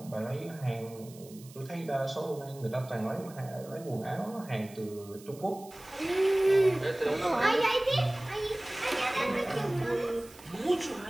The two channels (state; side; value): noise; right; hiss, 21 dB below the sound